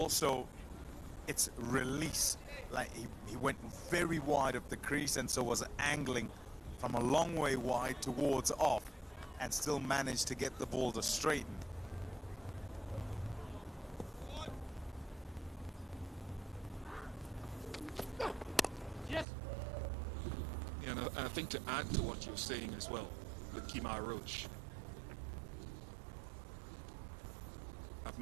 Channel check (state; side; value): drops out; left; at 19.2 s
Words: its release. Like he went very wide of the crease, and so was angling from a long way wide towards off, and still managed to get the ball to straighten. You know, and I think to add to what you're saying as well, with Kemar Roach, I've